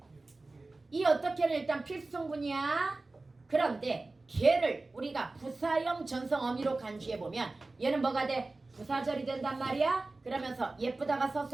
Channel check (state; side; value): quieter; left; 3.3 dB